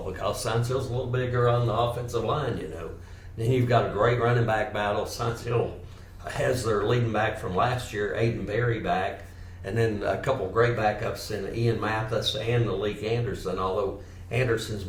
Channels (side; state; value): both; identical; correlation 1.00